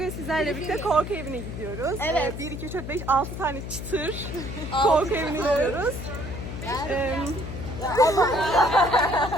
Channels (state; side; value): noise; left; hum, 8 dB below the sound